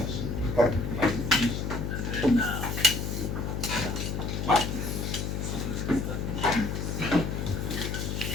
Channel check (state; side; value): noise; left; hum, 2 dB below the sound